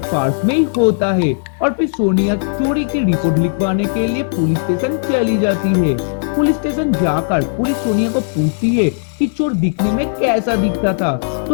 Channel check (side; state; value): right; silent; digital silence